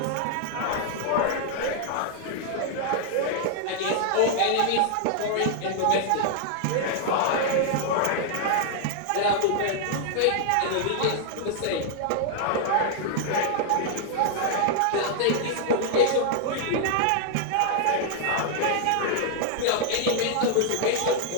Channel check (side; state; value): both; different; correlation 0.00